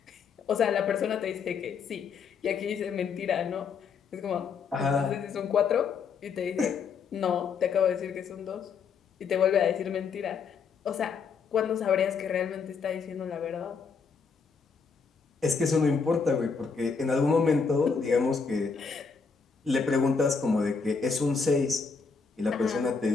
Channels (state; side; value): quieter; right; 5.5 dB